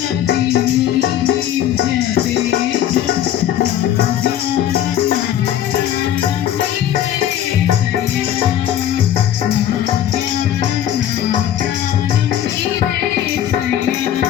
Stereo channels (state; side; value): quieter; right; 11.1 dB